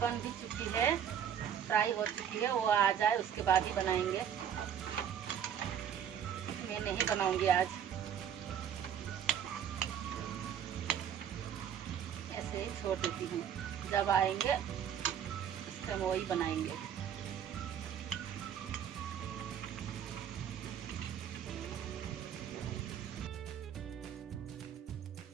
बन भी चुकी है, फ्राई हो चुकी है, वो आ जाए उसके बाद ही बनाएंगे। मैं नहीं बनाऊंगी आज, ऐसे ही छोड़ देती हूँ, जब आएंगे उस टाइम वही बनाएंगे।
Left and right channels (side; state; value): left; quieter; 8.9 dB